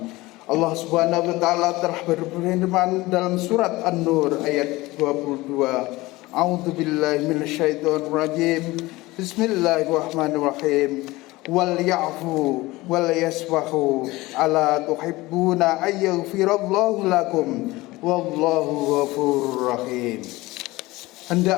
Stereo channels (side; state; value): right; quieter; 20.1 dB